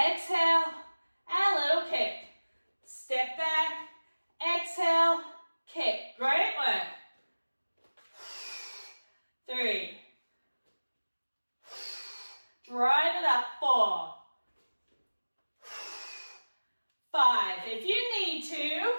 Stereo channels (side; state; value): both; inverted; correlation -1.00